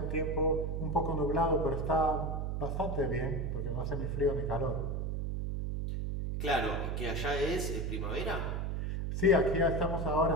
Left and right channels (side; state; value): right; noise; hum, 1 dB below the sound